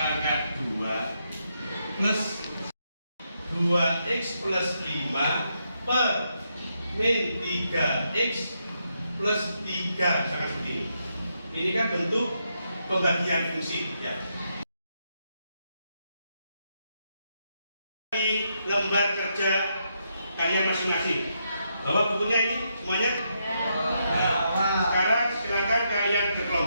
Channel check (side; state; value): both; inverted; correlation -0.80